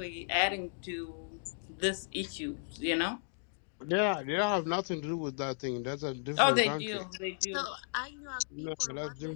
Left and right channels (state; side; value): silent; right; digital silence